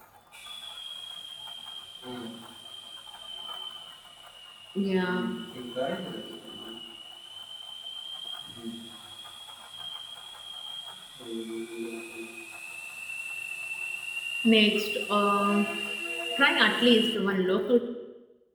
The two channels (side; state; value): both; identical; correlation 1.00